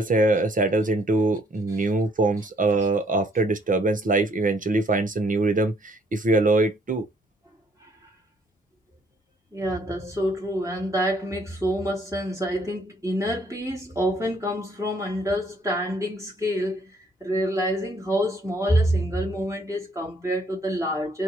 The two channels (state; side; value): normal; both; correlation 0.65